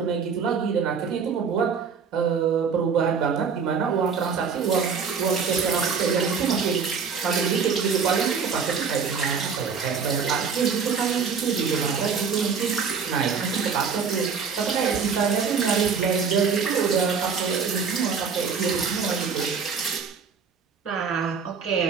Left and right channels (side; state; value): left; quieter; 6.0 dB